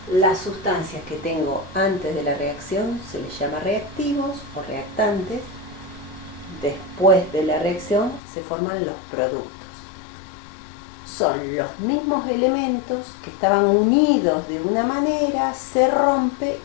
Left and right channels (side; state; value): right; drops out; at 8.2 s